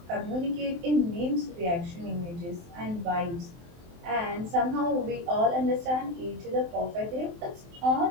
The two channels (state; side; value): late; left; 23 ms